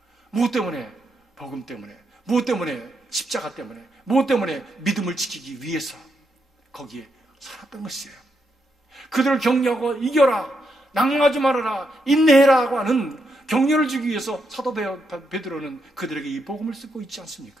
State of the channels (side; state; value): both; normal; correlation 0.81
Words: 무엇 때문에? 복음 때문에. 무엇 때문에? 십자가 때문에. 무엇 때문에? 믿음을 지키기 위해서 거기에 살았던 것이에요. 그들을 격려하고 이겨라, 낭망하지 말아라, 인내해라고 하는 격려를 주기 위해서 사도 베드로는 그들에게 이 복음을 쓰고 있지